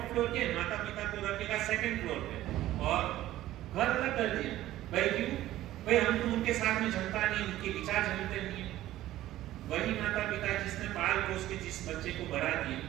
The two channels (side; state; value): left; quieter; 14.6 dB